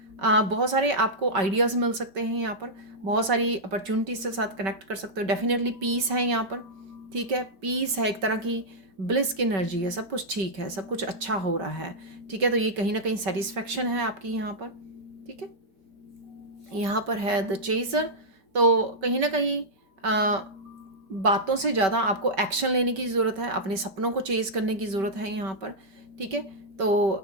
बहुत सारे आपको आइडियाज़ मिल सकते हैं यहाँ पर, बहुत सारी अपॉर्चुनिटीज के साथ कनेक्ट कर सकते हो। डेफिनेटली पीस है यहाँ पर, ठीक है। पीस है, एक तरह की ब्लिस की एनर्जी है, सब कुछ ठीक है, सब कुछ अच्छा हो रहा है, ठीक है। तो ये कहीं ना कहीं सेटिस्फेक्शन है आपकी यहाँ पर, ठीक है। यहाँ पर है द चेजर, तो कहीं ना कहीं बातों से ज़्यादा आपको एक्शन लेने की ज़रूरत है, अपने सपनों को चेज करने की ज़रूरत है यहाँ पर, ठीक है। तो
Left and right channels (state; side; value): late; left; 5.2 ms